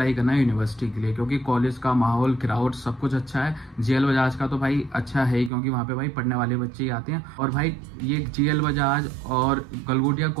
करना यूनिवर्सिटी के लिए, क्योंकि कॉलेज का माहौल, क्राउड सब कुछ अच्छा है। GL बजाज का तो भाई अच्छा है ही, क्योंकि वहाँ पे भाई पढ़ने वाले बच्चे ही आते हैं। और भाई ये GL बजाज और गलगोटिया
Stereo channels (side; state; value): left; drops out; at 5.5 s